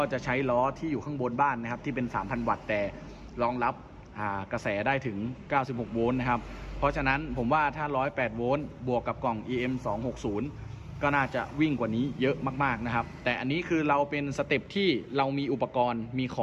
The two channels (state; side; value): identical; both; correlation 1.00